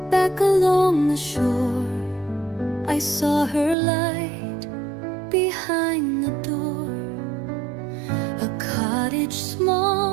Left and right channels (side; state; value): left; drops out; at 3.8 s